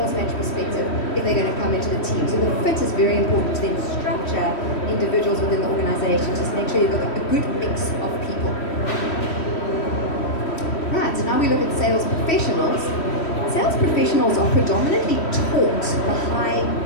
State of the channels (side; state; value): right; late; 3.1 ms